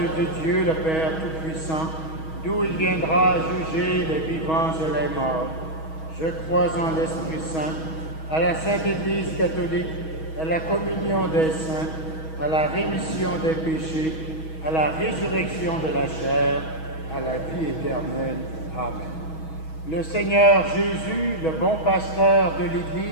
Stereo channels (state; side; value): late; right; 6.3 ms